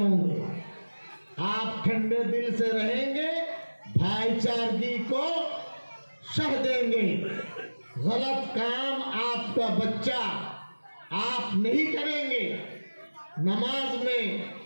گے، آپ ٹھنڈے دل سے رہیں گے، بھائی چارگی کو شہ دیں گے۔ غلط کام آپ کا بچہ آپ نہیں کریں گے۔ نماز میں،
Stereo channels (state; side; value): inverted; both; correlation -1.00